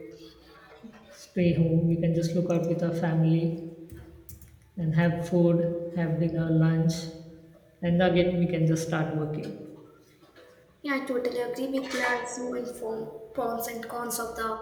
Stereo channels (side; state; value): both; identical; correlation 1.00